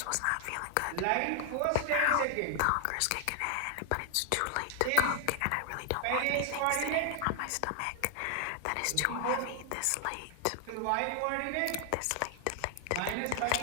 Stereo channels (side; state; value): both; different; correlation 0.00